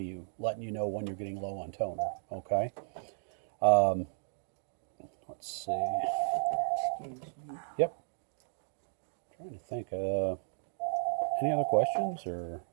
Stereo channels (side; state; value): left; silent; digital silence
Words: you, letting you know when you're getting low on toner, okay? Let's see. Excuse me. Yep. Trying to think, any other questions, or...